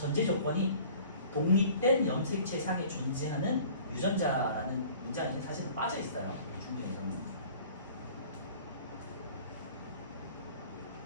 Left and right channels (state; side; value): inverted; both; correlation -0.48